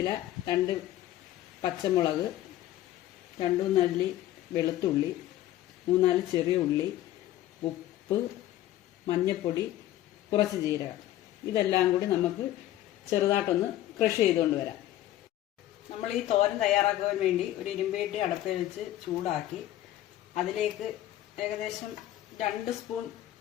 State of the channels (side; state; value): right; quieter; 13.9 dB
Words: 2 പച്ചമുളക്, 2 അല്ലി വെളുത്തുള്ളി, 3-4 ചെറിയ ഉള്ളി, ഉപ്പ്, മഞ്ഞൾപ്പൊടി, കുറച്ച് ജീരകം. ഇതെല്ലാം കൂടി നമുക്ക് ചെറുതായിട്ടൊന്ന് ക്രഷ് ചെയ്തുകൊണ്ട് വരാം. നമ്മൾ ഈ തോരൻ തയ്യാറാക്കുവാൻ വേണ്ടി ഒരു ഇരുമ്പേട്ടി അടുപ്പിൽ വെച്ച് ചൂടാക്കി അതിലേക്ക് ഏകദേശം 2 സ്പൂൺ